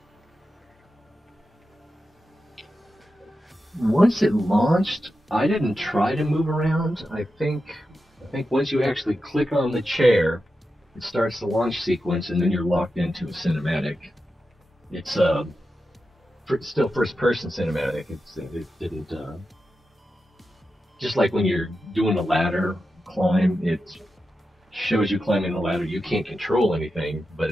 Once it launched, I didn't try to move around. I think once you actually click on the chair, it starts the launch sequence, and then you're locked into a cinematic. It's still first-person cinematic. It didn't just like when you're doing a ladder climb, it shows you climbing the ladder. You can't control anything, but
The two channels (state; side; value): normal; both; correlation 0.90